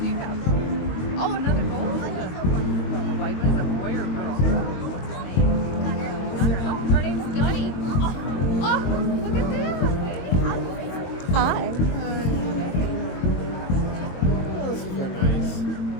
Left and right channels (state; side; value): late; right; 22 ms